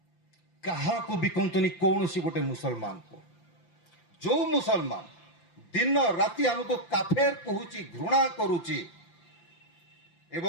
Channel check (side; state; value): right; late; 5.8 ms